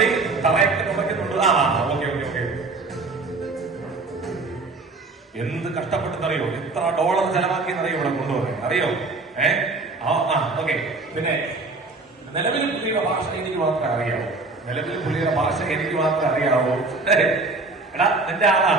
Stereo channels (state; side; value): quieter; left; 3.6 dB